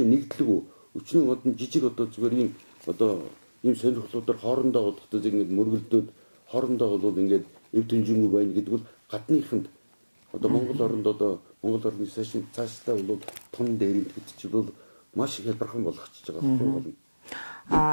нэгдлэг өчнөө одон жижиг одоо зүгээр ийм одоо ийм сонирхлуудаар хоорондоо бодохтой ингэж мөргөлдөөд хоорондоо бол ингээд эв дэнжингүй байна гэдэг бол гадныханд одоо Монгол оронд одоо Монгол орны цаашдаа бол тун дээр гэдэг чинь бол маш их хялбархан болгочихж байгаа байхгүй юу?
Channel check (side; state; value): both; inverted; correlation -1.00